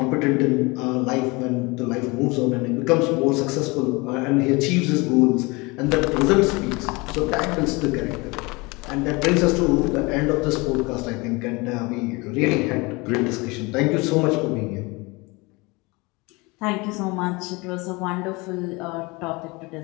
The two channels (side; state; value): right; quieter; 25.5 dB